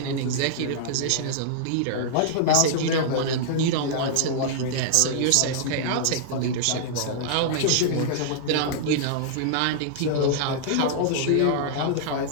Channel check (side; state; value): both; different; correlation -0.01